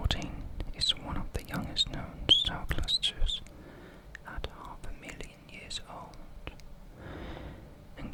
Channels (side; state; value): both; identical; correlation 1.00